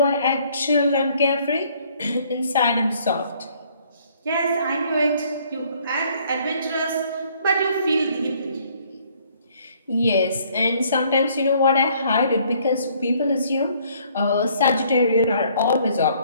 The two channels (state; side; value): inverted; both; correlation -0.62